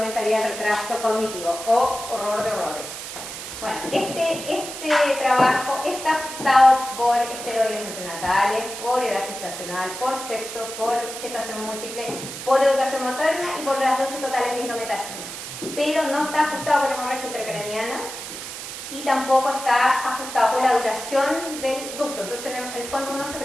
el retraso cognitivo o horror de horrores. Bueno, este trabajo está ajustado por esteroides prenatales, por edad gestacional, por sexo, por gestación múltiple, por educación materna y por las dosis totales de indometacina. Pero no está ajustado por hemorragia intracraniana y tampoco está ajustado por la duración del ducto. Entonces, en el fondo uno se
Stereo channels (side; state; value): right; noise; hiss, 9 dB below the sound